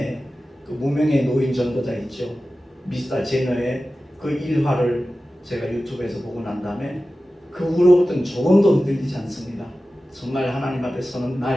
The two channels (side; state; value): both; normal; correlation 0.95